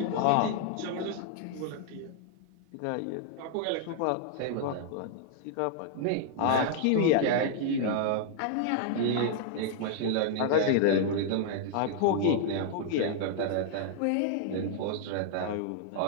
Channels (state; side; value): different; both; correlation -0.01